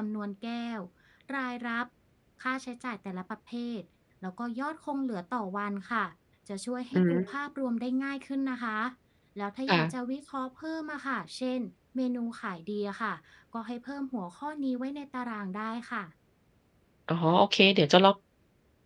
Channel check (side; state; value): both; identical; correlation 1.00